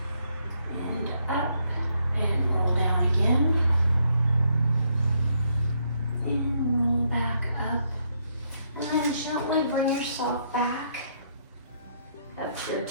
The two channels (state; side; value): inverted; both; correlation -0.73